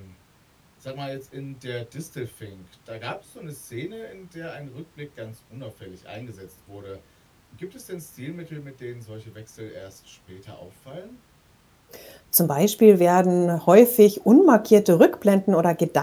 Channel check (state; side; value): identical; both; correlation 1.00